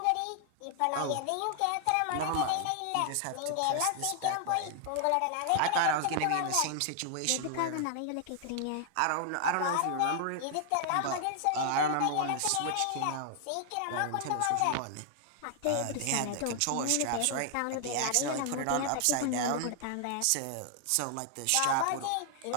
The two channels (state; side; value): different; both; correlation 0.00